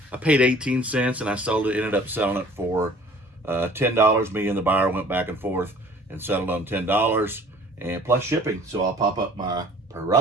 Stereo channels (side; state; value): both; normal; correlation 0.51